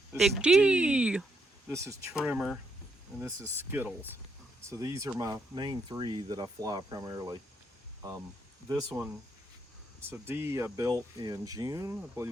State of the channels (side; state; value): both; normal; correlation 0.77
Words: this Big is D. This is Trimmer, and this is Skittles. So these are my main three that I fly primarily. This one, so D I built in June. I